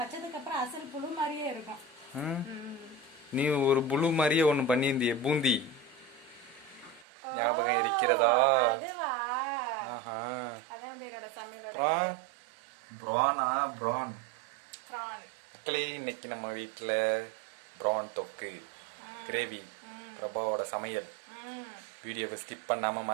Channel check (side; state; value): left; drops out; at 7.1 s